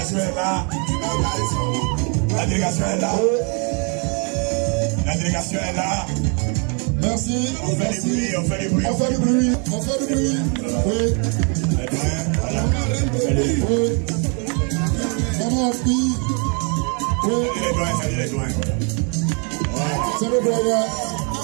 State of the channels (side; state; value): left; quieter; 37.2 dB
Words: est là. La délégation est là. La délégation est là. Merci. On fait du bruit, on fait du bruit. On fait du bruit. On fait du bruit. Oui. Oui. Maman, fille. Oui. Salut les doigts. C'est le doyen.